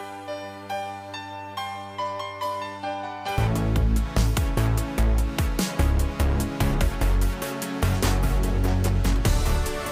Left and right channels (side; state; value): both; identical; correlation 1.00